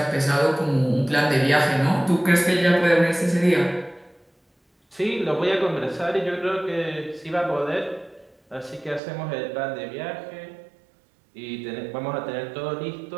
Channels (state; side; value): drops out; left; at 9.0 s